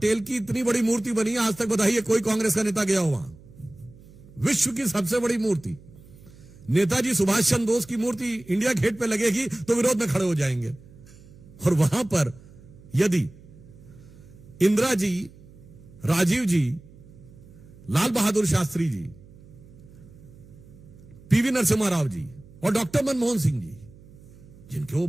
की इतनी बड़ी मूर्ति बनी है, आज तक बताइए कोई कांग्रेस का नेता गया हो वहां? विश्व की सबसे बड़ी मूर्ति नेताजी सुभाष चंद्र बोस की मूर्ति इंडिया गेट पे लगेगी तो विरोध में खड़े हो जाएंगे। और वहां पर यदि इंदिरा जी, राजीव जी, लाल बहादुर शास्त्री जी, पीवी नरसिम्हा राव जी और डॉक्टर मनमोहन सिंह जी, जिनके वो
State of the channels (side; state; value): right; noise; hum, 22 dB below the sound